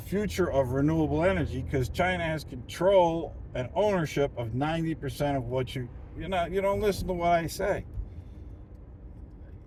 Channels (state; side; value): identical; both; correlation 1.00